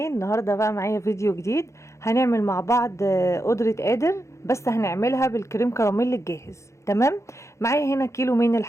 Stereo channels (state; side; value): late; right; 0.14 ms